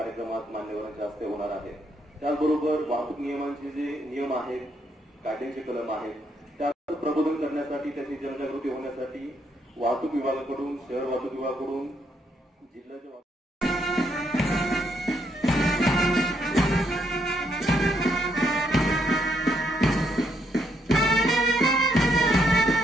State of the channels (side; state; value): both; normal; correlation 0.75